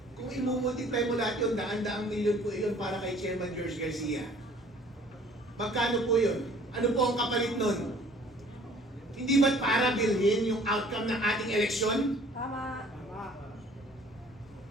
Kung imumultiply mo lahat yun, daan-daang milyon po yun para kay Chairman George Garcia. Magkano po yun? Ano po ang kapalit nun? Hindi ba't para bilhin yung outcome ng ating eleksyon? Tama.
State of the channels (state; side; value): normal; both; correlation 0.54